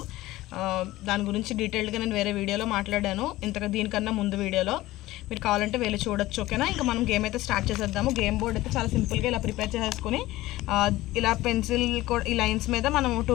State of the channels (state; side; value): quieter; right; 17.2 dB